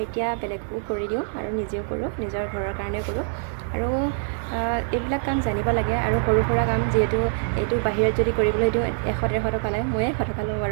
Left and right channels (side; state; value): left; silent; digital silence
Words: এতিয়া বেলেগকো কৰি দিওঁ আৰু নিজেও কৰোঁ, নিজৰ ঘৰৰ কাৰণেও কৰোঁ। আৰু এইবিলাক কাম জানিব লাগে। আৰু সৰু সুৰা কাম, যিহেতু এইটো বাহিৰত যদি কৰিবলৈ দিওঁ 100-150 টকা লয়, ময়ে 100 টকা লওঁ